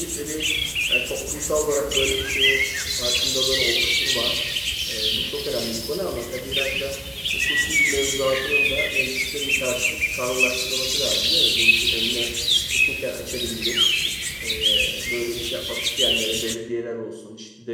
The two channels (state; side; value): identical; both; correlation 1.00